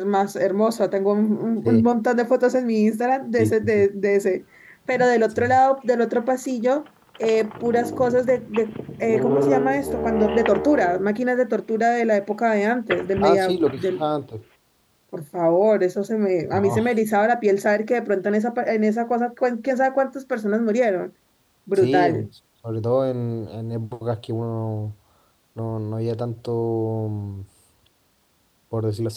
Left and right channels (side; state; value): both; identical; correlation 1.00